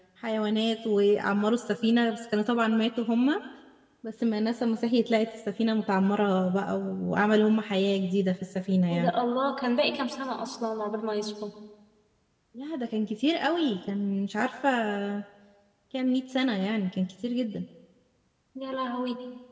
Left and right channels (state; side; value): identical; both; correlation 1.00